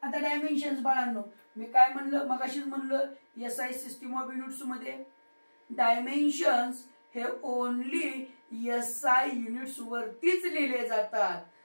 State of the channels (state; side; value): inverted; both; correlation -1.00